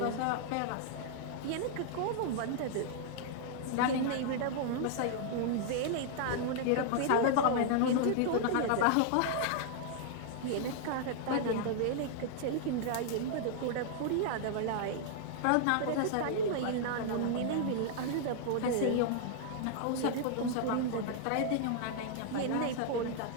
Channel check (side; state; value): both; different; correlation -0.01